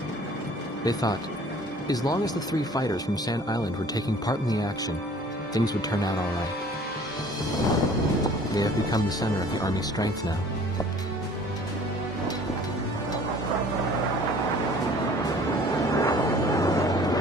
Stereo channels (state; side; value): normal; both; correlation 0.51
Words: They thought, as long as the 3 fighters from Sand Island were taking part in the action, things would turn out all right. They have become the center of the Army's strength now.